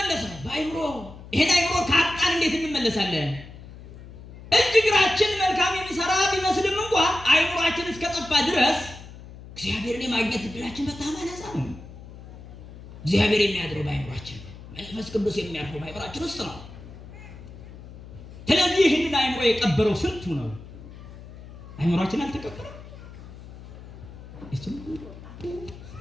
በአይምሮ። ይሄን አይምሮ ካጣን እንዴት እንመለሳለን? እጅ እግራችን መልካም የሚሰራ ቢመስልም እንኳ አይምሯችን እስከጠፋ ድረስ እግዚአብሔርን የማግኘት እድላችን በጣም አናሳ ነው። እግዚአብሔር የሚያድረው በአይምሯችን ነው። መንፈስ ቅዱስ የሚያርፈው በአይምሯችን ውስጥ ነው። ስለዚህ ይህንን አይምሮ የቀበረው ስንቱ ነው? አይምሯችን አልተቀበረም።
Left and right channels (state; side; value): noise; left; hum, 16 dB below the sound